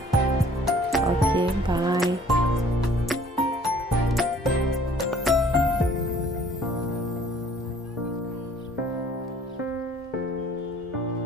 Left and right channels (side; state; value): both; normal; correlation 0.55